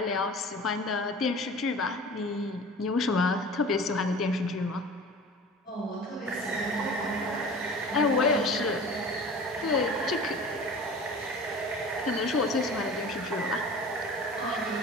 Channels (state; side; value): normal; both; correlation 0.39